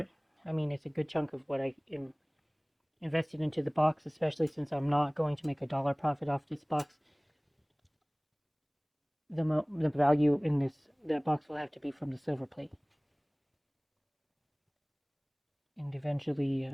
I mean, it's a good chunk of what I am invested into the box, especially since I'm not going to make $1 profit off this box. The value in that box will have to be from the Silverplate, and eventually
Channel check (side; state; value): both; identical; correlation 1.00